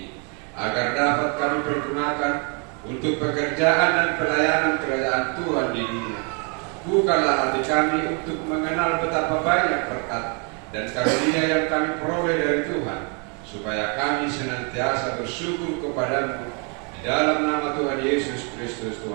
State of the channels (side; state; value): left; quieter; 36.2 dB